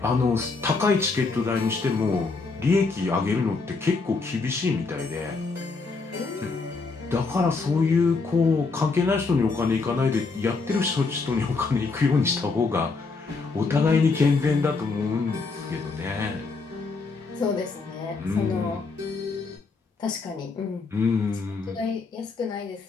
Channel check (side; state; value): right; quieter; 4.2 dB